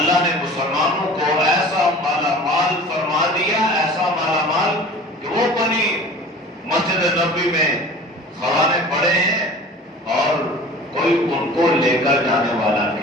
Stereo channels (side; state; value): both; normal; correlation 0.41